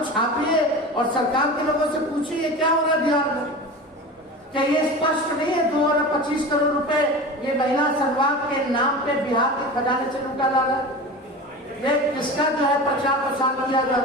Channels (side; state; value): both; normal; correlation 0.32